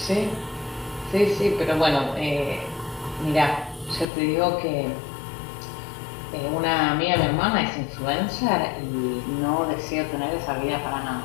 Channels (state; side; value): drops out; right; at 4.0 s